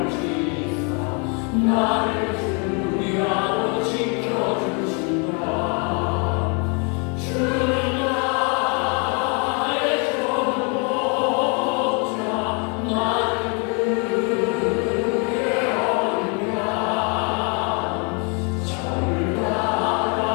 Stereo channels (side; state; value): right; quieter; 35.2 dB